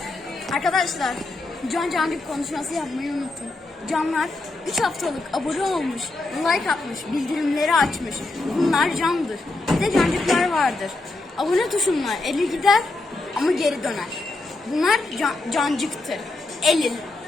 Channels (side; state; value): right; quieter; 3.1 dB